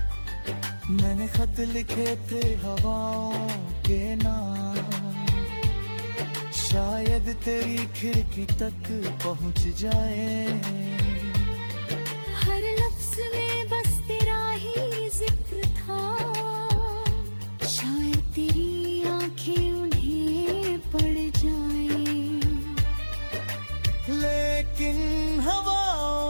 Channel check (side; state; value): both; inverted; correlation -1.00